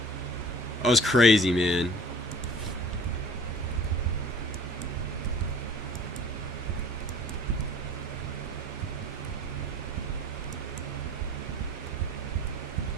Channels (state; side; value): normal; both; correlation 0.48